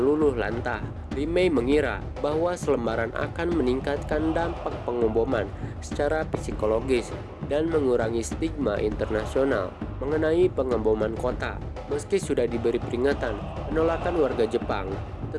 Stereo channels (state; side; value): identical; both; correlation 1.00